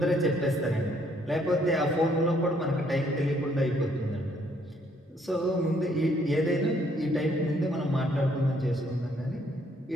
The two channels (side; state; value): both; normal; correlation 0.67